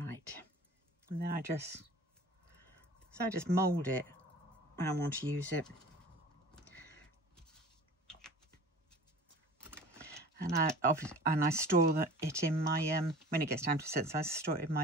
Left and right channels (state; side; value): normal; both; correlation 0.42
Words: and then I just mould it when I want to use it. And I store it in my when it gets time to set, so I store it in